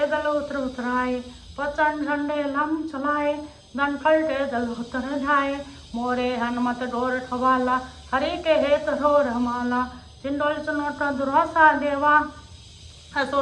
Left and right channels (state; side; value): identical; both; correlation 1.00